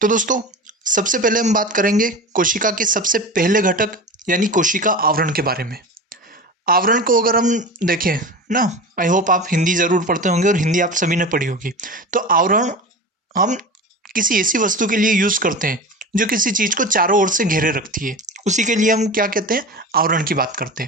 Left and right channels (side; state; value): both; normal; correlation 0.30